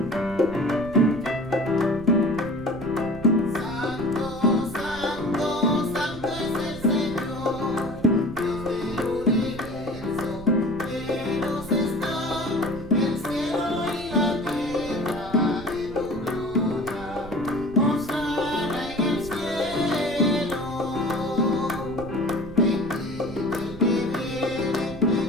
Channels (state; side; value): noise; right; rumble, 14 dB below the sound